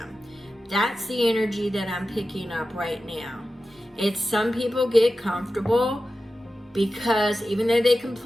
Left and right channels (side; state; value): both; normal; correlation 0.93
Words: That's the energy that I'm picking up right now. It's some people get comfortable because even though they